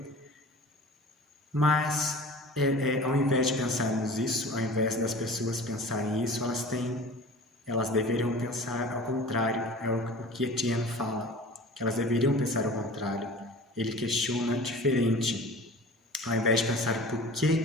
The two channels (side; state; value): both; normal; correlation 0.40